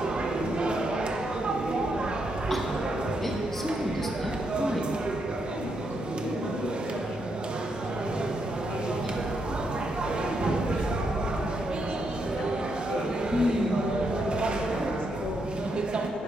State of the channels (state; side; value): normal; both; correlation 0.80